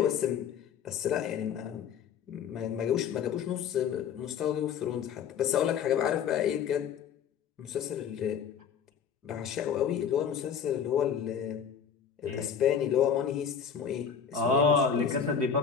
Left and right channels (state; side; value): quieter; right; 7.4 dB